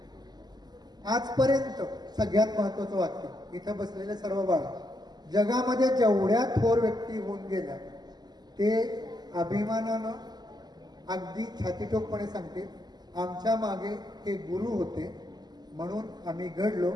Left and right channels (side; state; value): left; late; 0.20 ms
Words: आजपर्यंत सगळ्यात महत्वाचं वाक्य, इथं बसलेले सर्व बाळ, जगामध्ये जेवढ्या थोर व्यक्ती होऊन गेल्या ते अभिमानानं अगदी छातीटोकपणे सांगते, आमच्या मागे हे गुरु होते म्हणून आम्ही घडलो,